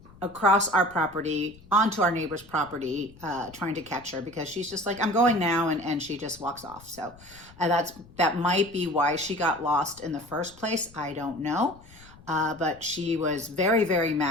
across our property, onto our neighbor's property, trying to catch her, because she's just like, I'm going now, and she just walks off. So that might be why she got lost in the first place. I don't know. But she was very, very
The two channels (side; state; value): left; noise; rumble, 23 dB below the sound